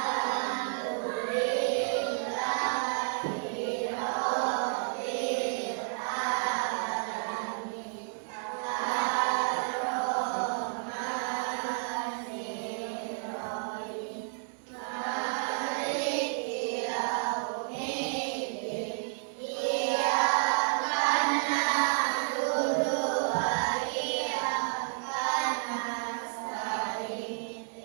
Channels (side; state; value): left; silent; 57 dB below the other